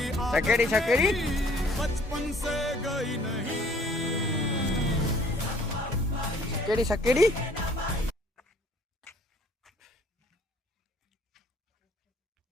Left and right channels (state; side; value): normal; both; correlation 0.57